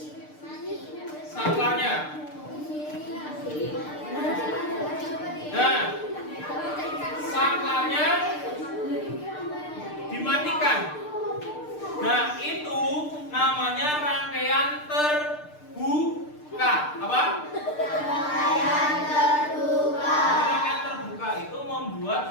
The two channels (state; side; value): late; right; 6.6 ms